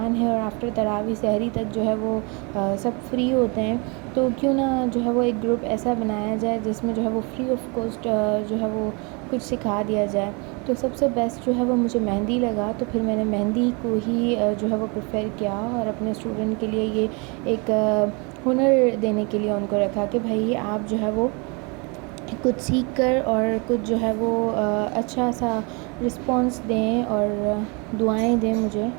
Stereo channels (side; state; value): left; quieter; 31.3 dB